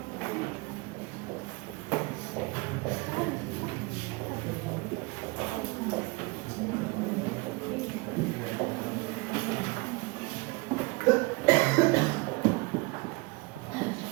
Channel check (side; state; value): left; quieter; 26.2 dB